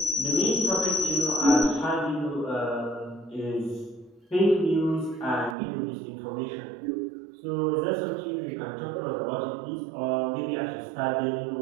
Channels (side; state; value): left; drops out; at 5.6 s